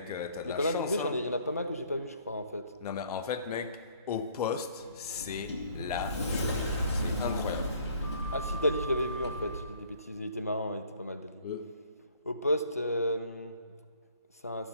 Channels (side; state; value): both; inverted; correlation -0.59